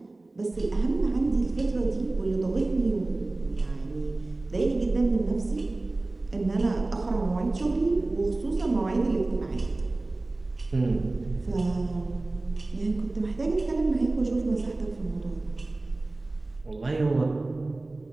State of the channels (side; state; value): left; quieter; 3.1 dB